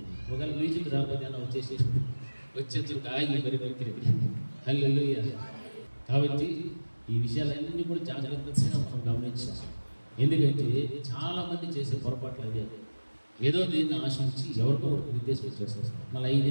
ఒకవేళ మ్యూజిక్ రాకపోతే అలా వచ్చేసి ఆగి మరి వ్యక్తి. హల్లెలూయా. కాబట్టి ఈ విషయాలన్నీ కూడా జాగ్రత్తగా మనం గమనించాలి. ఎందుకంటే చాలామంది చేసే పొరపాట్లు అదే. ఏదో దీన్ని ఆశించి ఎవరికో ఒకరికి నిర్దేశం చేస్తారు. మళ్ళీ 5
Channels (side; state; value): both; inverted; correlation -1.00